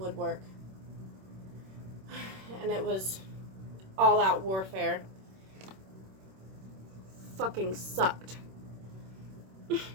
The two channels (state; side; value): late; left; 26 ms